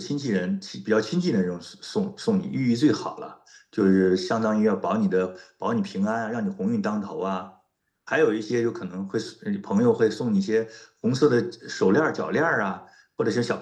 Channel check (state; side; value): identical; both; correlation 1.00